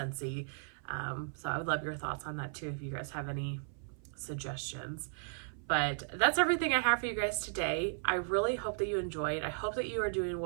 So I would love your thoughts on that too, if you guys have any suggestions. But that's everything I have for you guys today. I really hope that you enjoyed. I hope that you are doing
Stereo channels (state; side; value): silent; left; 54 dB below the other